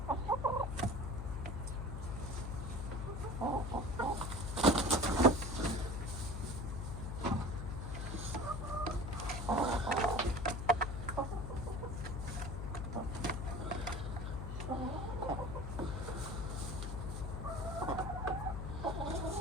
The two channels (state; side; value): noise; left; hum, 4 dB below the sound